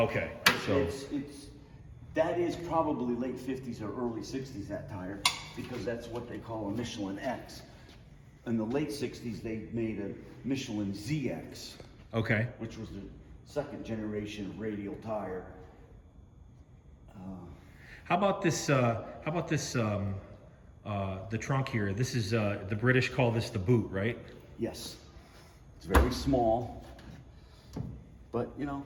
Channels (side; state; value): both; identical; correlation 1.00